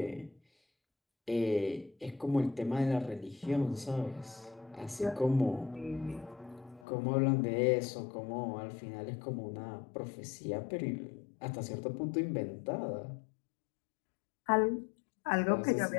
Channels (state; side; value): drops out; right; at 6.9 s